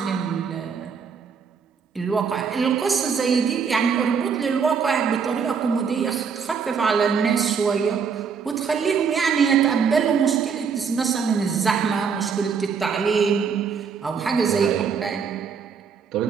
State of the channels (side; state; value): left; quieter; 6.2 dB